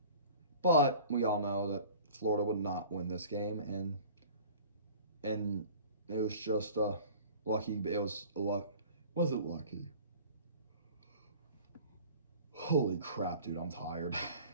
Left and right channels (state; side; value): inverted; both; correlation -0.44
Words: But we all know that Florida would not win this game, and it was just lucky. It was luck. Was it lucky? Holy crap, dude! I'm tired.